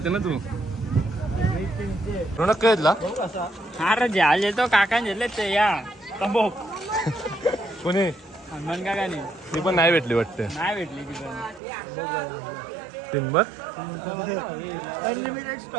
ना तू. रोनक काय येतला अरे जहाज येतो काका घेतले ते या तंबोक कोणी हनुमान काकाने. ती पण नाही भेटली वाटते. नाही भेटली ती पण. टिंबर अनलिमिटेड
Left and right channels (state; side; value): drops out; left; at 11.6 s